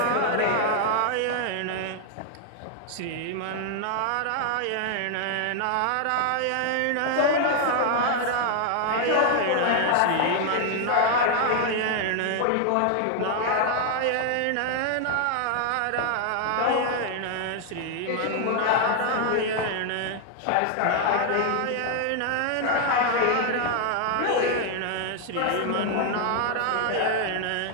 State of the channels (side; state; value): both; different; correlation 0.00